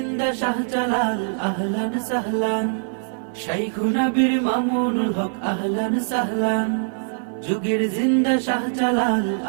শাহজালাল আহলান সাহলান। শাইখুনা বীর মামুনুল হক আহলান সাহলান, যুগের জিন্দা শাহজালাল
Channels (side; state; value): left; silent; 58 dB below the other